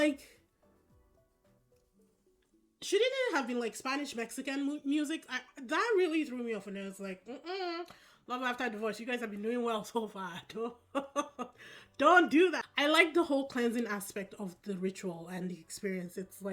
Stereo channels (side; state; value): both; identical; correlation 1.00